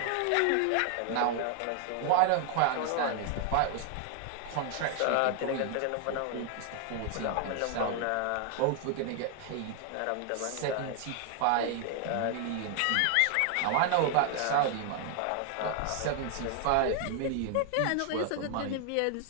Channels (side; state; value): both; different; correlation 0.00